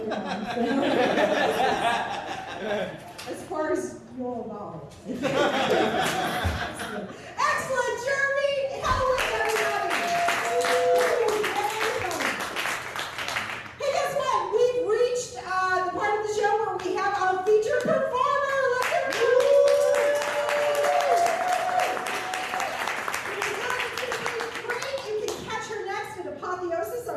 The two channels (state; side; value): identical; both; correlation 1.00